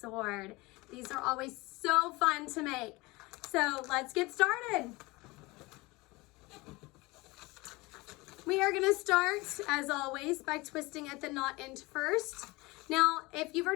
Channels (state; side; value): quieter; right; 23.0 dB